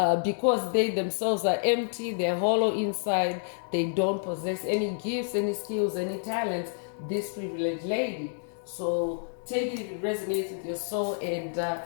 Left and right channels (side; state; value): right; silent; digital silence